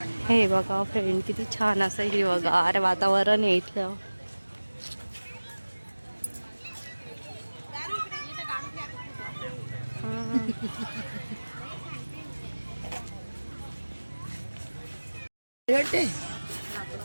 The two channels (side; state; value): both; inverted; correlation -1.00